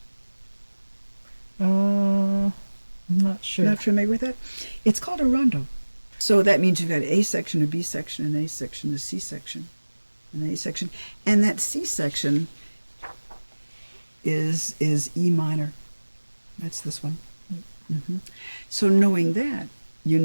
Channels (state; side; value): inverted; both; correlation -1.00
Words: I'm not sure. Not familiar with that? It's called a rondo. So that means you've got A section, a B section, an A section, a C section, an A section. And that C section is E minor. That's this one. Mm-hmm. So knowing that, you